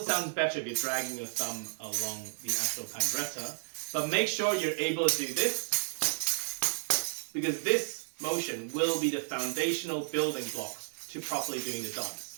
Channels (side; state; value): left; silent; 56 dB below the other